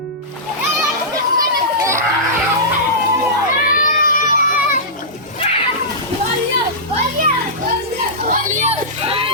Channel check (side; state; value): both; normal; correlation -0.16